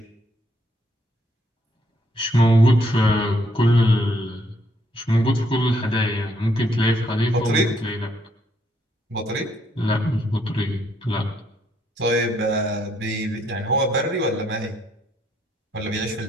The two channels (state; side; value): normal; both; correlation 0.71